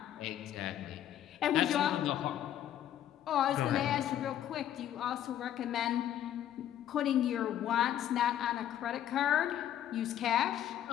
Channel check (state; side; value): quieter; right; 11.2 dB